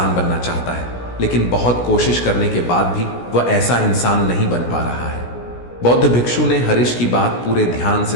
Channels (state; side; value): late; right; 16 ms